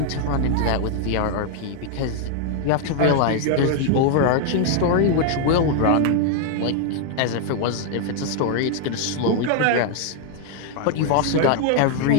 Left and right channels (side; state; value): both; different; correlation 0.00